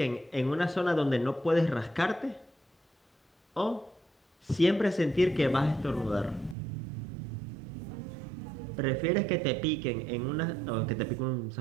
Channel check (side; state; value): left; drops out; at 6.6 s